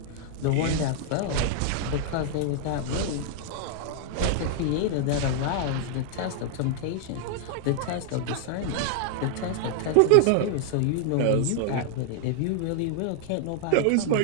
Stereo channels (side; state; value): both; different; correlation -0.01